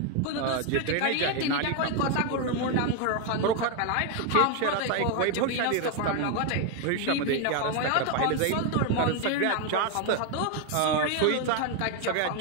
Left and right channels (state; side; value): different; both; correlation 0.01